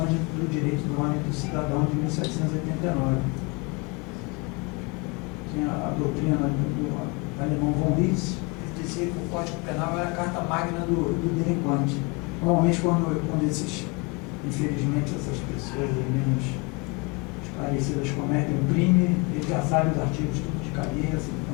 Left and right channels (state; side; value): quieter; right; 28.6 dB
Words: do direito do homem e do cidadão de 1789. Tinha a doutrina do alemão von Litz, que dizia que o Código Penal era a carta magna do delinquente. Normalmente, quando infelizmente, essas pessoas menos esclarecidas cometem um crime, ele já sabe os artigos tudo de cabeça.